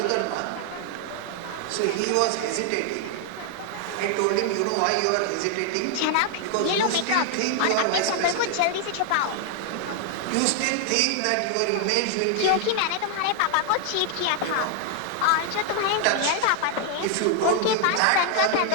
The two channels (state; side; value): different; both; correlation 0.00